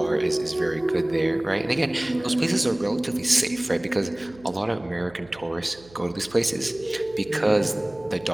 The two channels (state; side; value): noise; right; hum, 23 dB below the sound